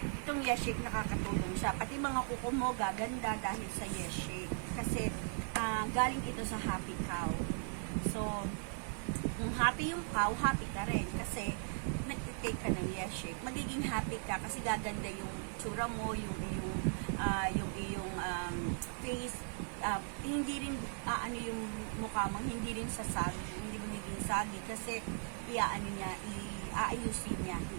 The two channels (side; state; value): left; silent; 52 dB below the other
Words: itong Yes Shake nakakatulong siya. Pati mga kuko mo gaganda dahil sa Yes Shake. Kasi galing ito sa happy cow. So, kung happy yung cow, happy ka rin. Kasi, nag-take ka ng Yes Shake. Magiging happy ka kasi gaganda yung tsura mo, yung iyong face. Hindi rin, yung mukha mo, hindi rin sasagi. Hindi mo naging sagi. Kasi, aayusin niya.